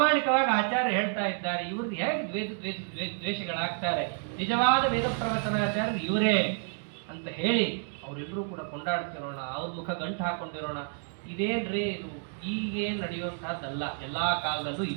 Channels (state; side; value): silent; left; 58 dB below the other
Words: ಆಚಾರ್ಯ ಹೇಳ್ತಾ ಇದ್ದಾರೆ, ಇವ್ರದ್ದು ಹೇಗೆ ದ್ವೇಷಗಳಾಗ್ತಾರೆ? ನಿಜವಾದ ವೇದ ಪ್ರವಚನಾಚಾರ್ಯರು ಇವರೇ ಅಂತ ಹೇಳಿ ಅವರೆಲ್ಲರೂ ಕೂಡ ಕೊಂಡಾಡ್ತಿರೋಣ, ಅವ್ರ ಮುಖ ಗಂಟು ಹಾಕೊಂಡಿರೋಣ. ಇದೇನ್ರಿ ಇದು ಈಗೇನು ನಡೆಯುವಂತಹದ್ದಲ್ಲ, ಎಲ್ಲಾ ಕಾಲದಲ್ಲೂ